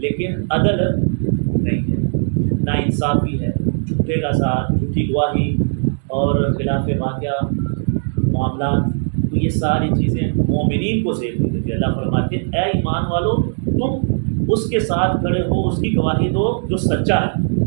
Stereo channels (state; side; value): silent; left; digital silence